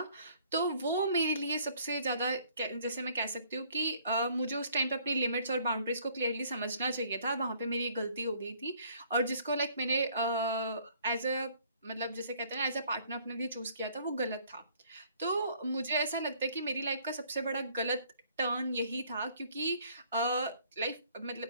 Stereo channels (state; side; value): inverted; both; correlation -0.61